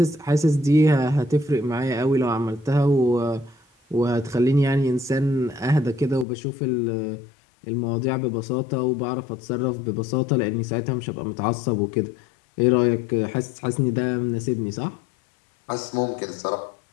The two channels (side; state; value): right; drops out; at 6.2 s